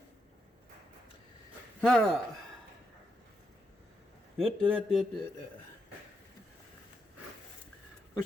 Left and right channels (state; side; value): normal; both; correlation 0.82